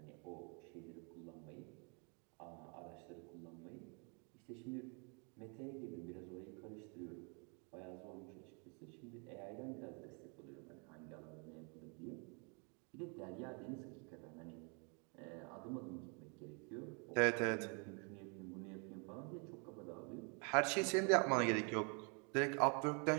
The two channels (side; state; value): left; quieter; 35.9 dB